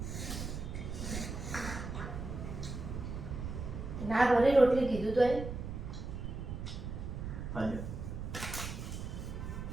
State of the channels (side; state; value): right; noise; rumble, 6 dB below the sound